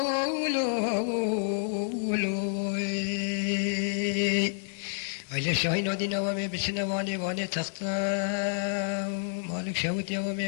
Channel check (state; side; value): silent; right; 59 dB below the other